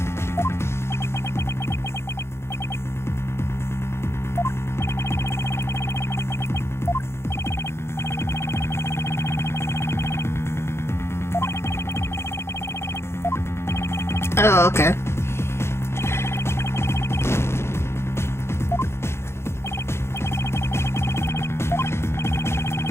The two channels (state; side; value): late; right; 0.12 ms